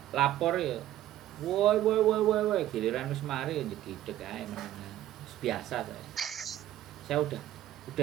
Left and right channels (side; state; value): left; quieter; 13.3 dB